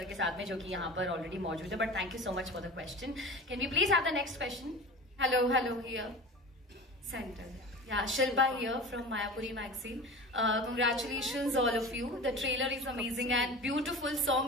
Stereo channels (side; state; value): both; normal; correlation 0.34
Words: के साथ में, जो कि यहाँ पर ऑलरेडी मौजूद है। But thank you so much for the question. Can we please have the next question? Hello here centre. Yeah, Shilpa here from Mayapuri magazine. Congratulations all of you. The trailer is amazing and beautiful.